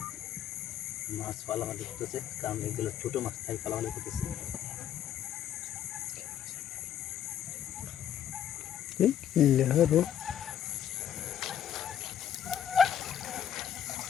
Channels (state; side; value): quieter; right; 9.9 dB